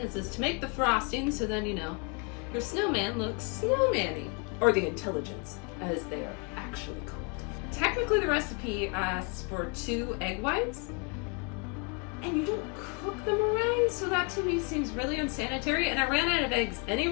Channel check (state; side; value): quieter; right; 32.6 dB